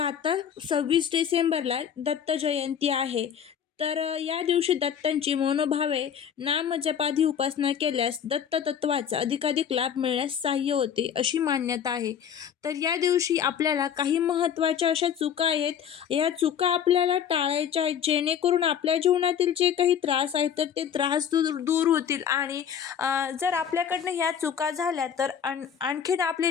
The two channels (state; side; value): quieter; right; 8.4 dB